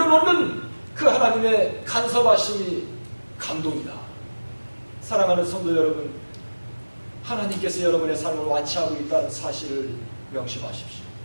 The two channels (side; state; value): both; inverted; correlation -1.00